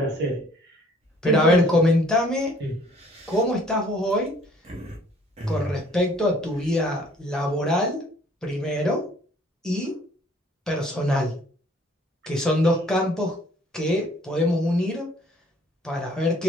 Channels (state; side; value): normal; both; correlation 0.58